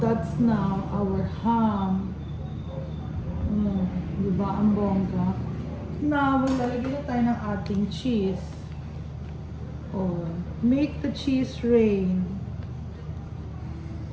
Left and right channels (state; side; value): identical; both; correlation 1.00